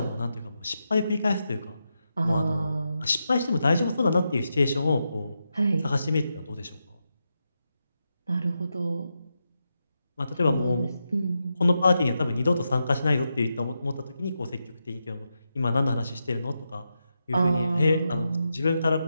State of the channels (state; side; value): inverted; both; correlation -0.87